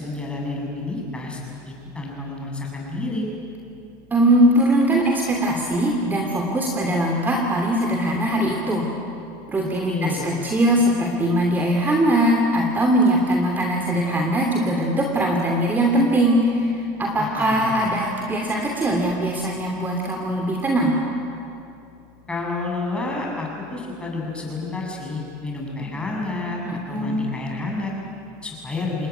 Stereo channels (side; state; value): left; noise; hum, 29 dB below the sound